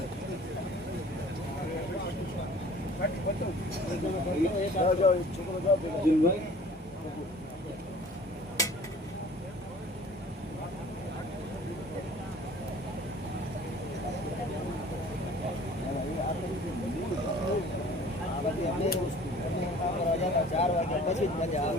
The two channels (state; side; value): normal; both; correlation 0.48